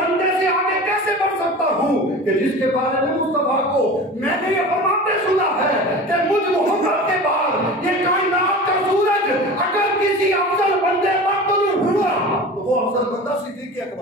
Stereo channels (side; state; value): both; normal; correlation 0.35